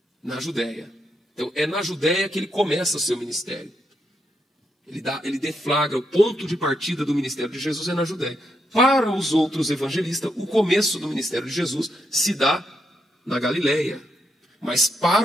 Na Judéia. Então, é na Judéia que ele começa o seu ministério. Ele deflagra o ponto de partida do ministério de Jesus é na Judéia. Para os outros evangelistas, o começo do ministério de Jesus se dá na Galileia. Mas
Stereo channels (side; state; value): both; normal; correlation 0.80